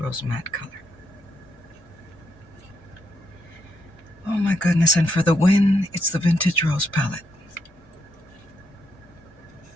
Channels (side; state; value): both; normal; correlation 0.79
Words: matte color. Oh my goodness, and for the win, it's the Vintage Rose palette.